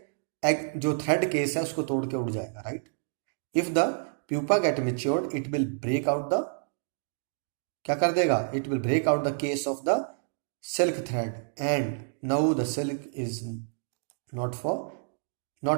एग जो थ्रेड केस है उसको तोड़ के उड़ जाएगा, right? If the pupa get matured it will break out the, क्या कर देगा? It will break out the case of the silk thread and now the silk is not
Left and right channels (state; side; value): silent; left; digital silence